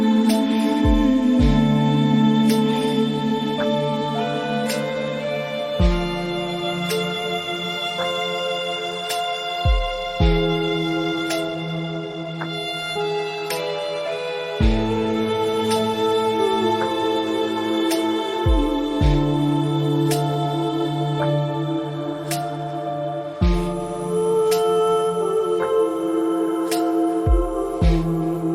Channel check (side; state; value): both; identical; correlation 1.00